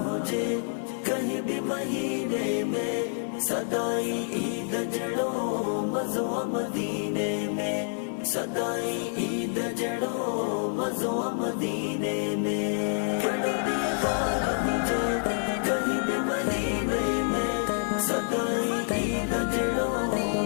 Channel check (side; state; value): right; silent; 59 dB below the other